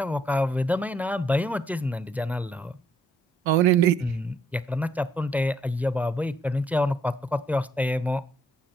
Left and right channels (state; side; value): normal; both; correlation 0.68